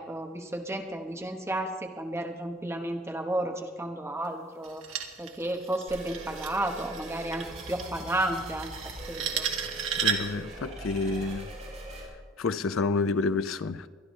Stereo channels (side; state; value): both; normal; correlation 0.48